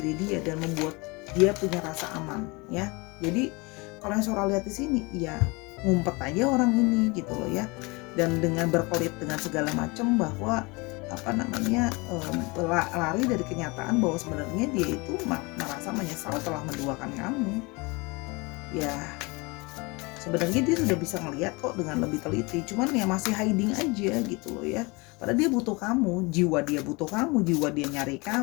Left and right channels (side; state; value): right; quieter; 26.5 dB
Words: dia dan membuat dia punya rasa aman ya. Jadi kalau yang Sora lihat di sini ya ngumpet aja orang ini gitu loh ya, dan dengan berkelit dengan segala macam bahwa lari dari kenyataan bahwa sebenarnya dia itu merasa menyesal telah menduakan kamu ya. Sebenarnya dia sudah bisa ngelihat kok dengan lebih teliti, cuman ya masih hiding aja gitu loh ya. Padahal dia butuh kamu, jiwa dia butuh kamu, jiwa dia nyari